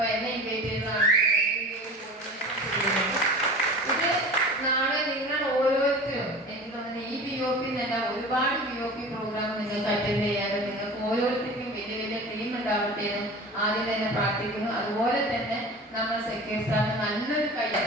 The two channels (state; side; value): normal; both; correlation 0.36